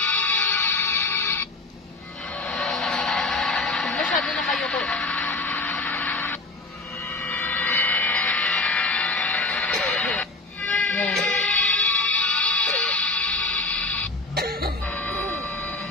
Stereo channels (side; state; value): right; quieter; 3.1 dB